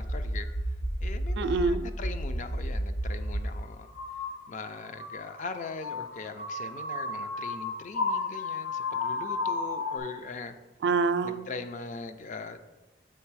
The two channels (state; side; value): normal; both; correlation 0.29